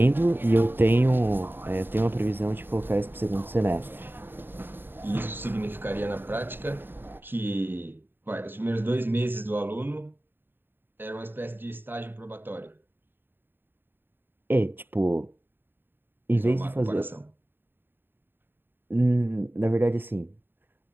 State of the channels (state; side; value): late; left; 0.098 ms